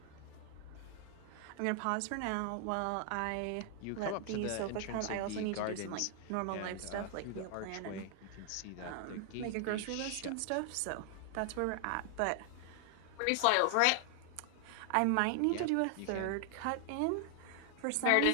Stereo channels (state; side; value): different; both; correlation 0.00